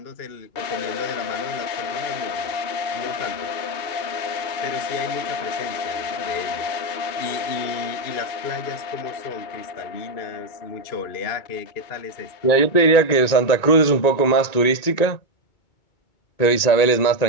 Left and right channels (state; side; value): late; right; 1.9 ms